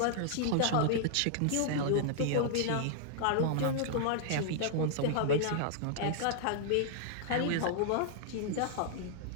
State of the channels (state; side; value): different; both; correlation -0.01